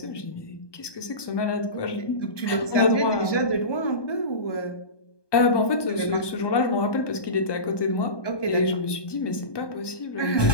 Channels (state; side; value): late; right; 1.2 ms